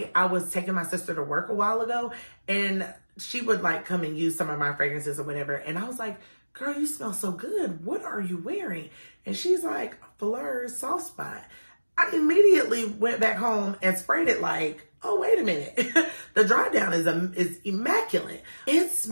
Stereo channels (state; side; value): inverted; both; correlation -1.00